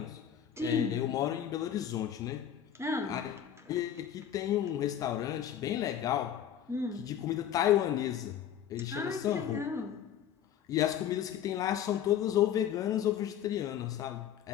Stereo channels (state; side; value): quieter; right; 9.8 dB